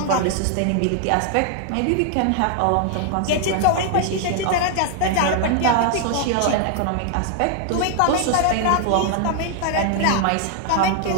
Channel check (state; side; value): different; both; correlation 0.00